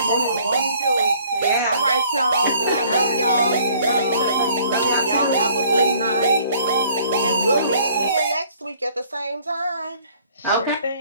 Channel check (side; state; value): both; inverted; correlation -0.58